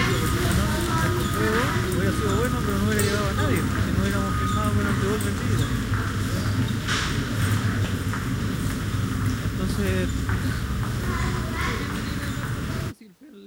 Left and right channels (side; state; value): both; identical; correlation 1.00